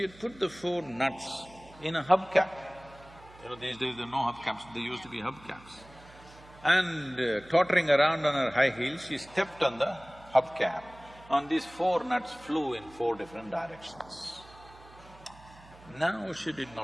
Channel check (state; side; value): noise; right; hum, 22 dB below the sound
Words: had put the 4 nuts in a hubcap. These days there are no hubcaps, there used to be hubcaps. And tottering around on her high heels, she stepped on the hubcap. On these 4 nuts flew in 4 different directions. Now she did